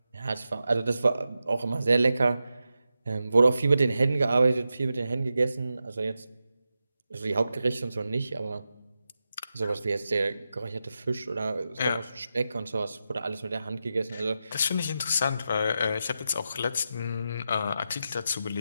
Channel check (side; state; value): both; inverted; correlation -0.89